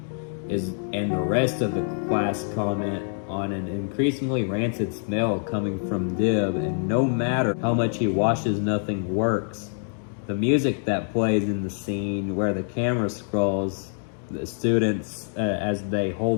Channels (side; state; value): right; silent; 61 dB below the other